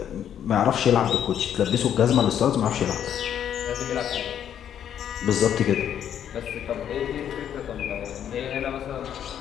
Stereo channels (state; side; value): quieter; right; 9.6 dB